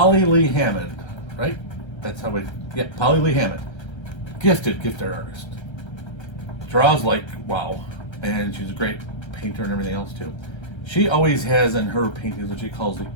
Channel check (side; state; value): right; late; 1.3 ms